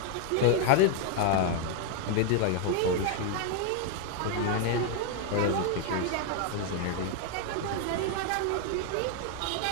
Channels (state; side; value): different; both; correlation 0.01